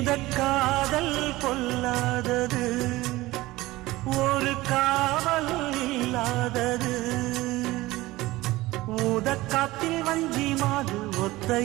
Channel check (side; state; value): left; quieter; 18.8 dB